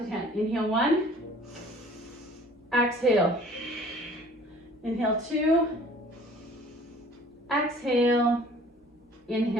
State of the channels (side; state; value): both; normal; correlation 0.51